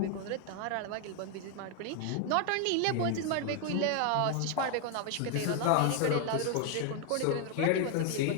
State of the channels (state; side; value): different; both; correlation 0.00